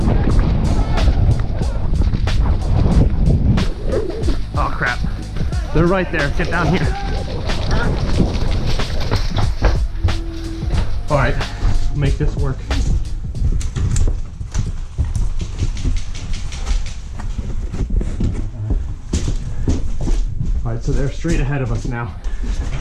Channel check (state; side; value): identical; both; correlation 1.00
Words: Oh crap. They're right there. Get down here. Alright, make this work. Alright, so they're straight ahead of us now.